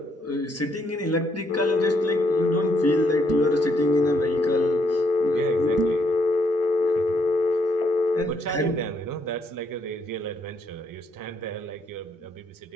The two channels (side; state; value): both; normal; correlation 0.72